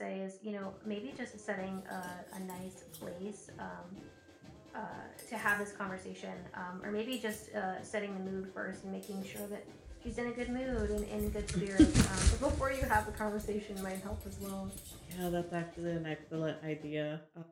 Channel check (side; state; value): both; identical; correlation 1.00